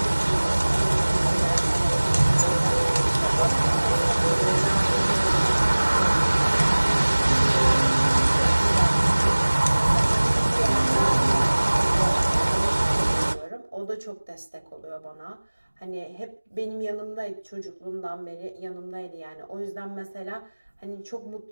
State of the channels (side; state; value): both; inverted; correlation -1.00